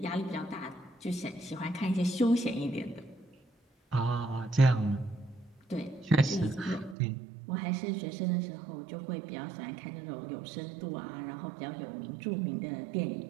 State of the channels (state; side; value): drops out; left; at 7.0 s